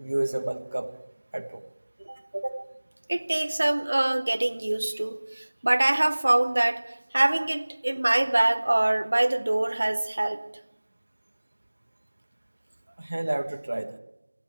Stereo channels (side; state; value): both; inverted; correlation -1.00